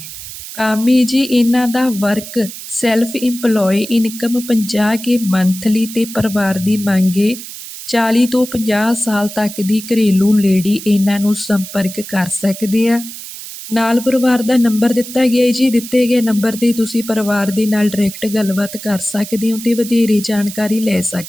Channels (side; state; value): right; noise; hiss, 12 dB below the sound